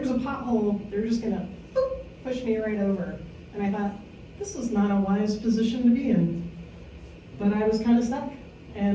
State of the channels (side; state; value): both; identical; correlation 1.00